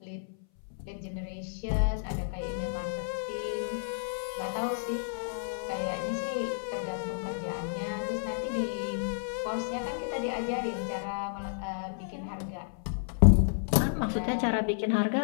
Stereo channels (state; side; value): silent; right; 57 dB below the other